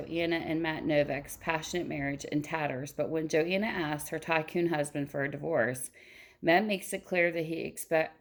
and Matt Novak's passionate marriage in tatters, but when Joanna asks her tycoon husband for a divorce, Matt makes it clear that he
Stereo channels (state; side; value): identical; both; correlation 1.00